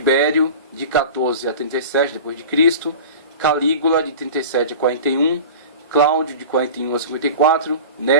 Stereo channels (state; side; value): inverted; both; correlation -0.35